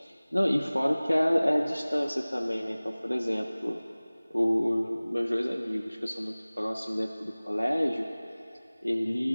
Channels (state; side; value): inverted; both; correlation -0.99